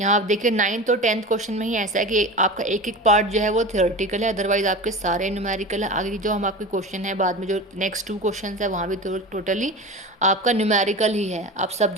आप देखिए 9th और 10th क्वेश्चन में ही ऐसा है कि आपका एक एक पार्ट जो है वो थ्योरेटिकल है, अदरवाइज आपके सारे न्यूमेरिकल है। आगे जो हम आपके क्वेश्चन है बाद में जो नेक्स्ट 2 क्वेश्चन है वहाँ भी टोटली आपका न्यूमेरिकल ही है। अब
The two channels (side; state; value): both; normal; correlation 0.30